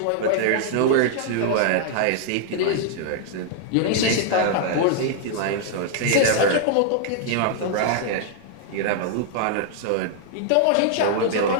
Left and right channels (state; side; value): different; both; correlation -0.01